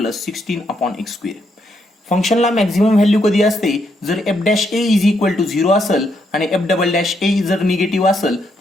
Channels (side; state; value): both; normal; correlation 0.77